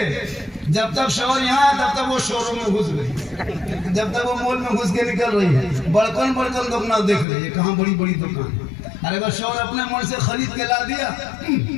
जब तक शोहर यहाँ है तब तक वो शोरूम में घुस गई, जब तक वो मॉल में घुस के निकल रही है, बड़कन बड़कन दुकान देख रही है, कहाँ बड़ी बड़ी दुकान। अरे अगर शोहर अपने मन से खरीद के ला दिया,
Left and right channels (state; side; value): drops out; right; at 7.2 s